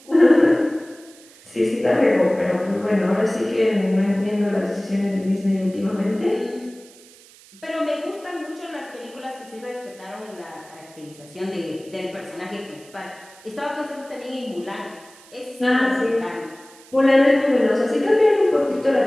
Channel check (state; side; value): noise; right; hiss, 24 dB below the sound